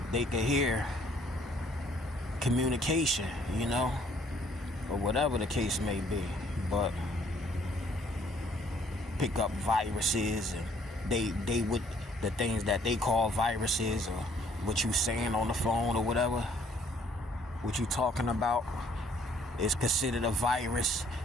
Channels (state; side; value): normal; both; correlation 0.62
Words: they could hear communication, you know, or whatever the case may be. But pick up viruses, and they would, the things that they call viruses, or what you saying on the phone or whatever, what you talking about is considered a virus